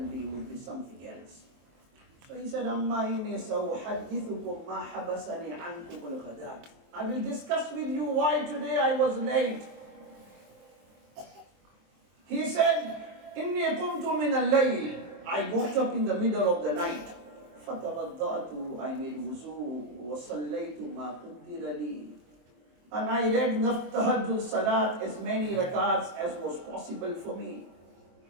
be, it would be something else. So he said, Amma inni sawuhaddithukum ma habasani ankum al-ghadat. I will discuss with you why today I was late. He said, Inni qumtu min al-layl. I got up in the middle of the night. فَتَوَضَّأْتُ. I made wuzu. وَصَلَّيْتُ مَا قُدِّرَ لِي. And I read tahajjud salat, as many rakats as was possible for me.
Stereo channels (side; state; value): left; late; 23 ms